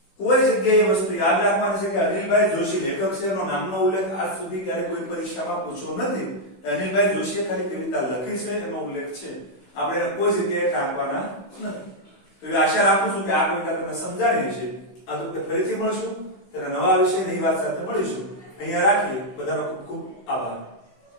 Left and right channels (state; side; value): late; right; 16 ms